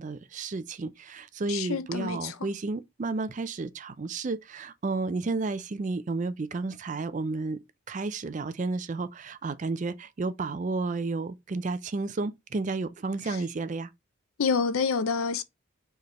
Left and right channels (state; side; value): normal; both; correlation 0.34